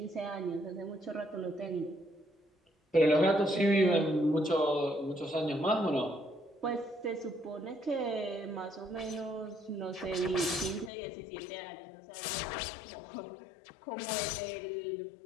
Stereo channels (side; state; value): right; drops out; at 10.9 s